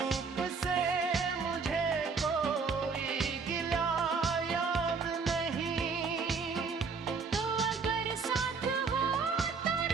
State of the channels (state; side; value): quieter; left; 5.1 dB